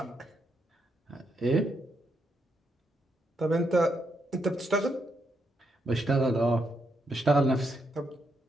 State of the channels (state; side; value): normal; both; correlation 0.79